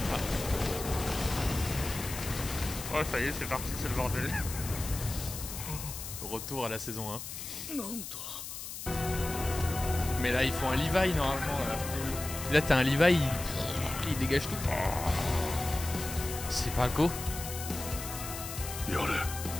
Oh ça y est, c'est parti, c'est le bordel. Retour à la saison 1. Mais là ils font un Levi normalement. Là t'as un Levi, il dégage tout. C'est Falco.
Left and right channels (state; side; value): noise; left; hiss, 8 dB below the sound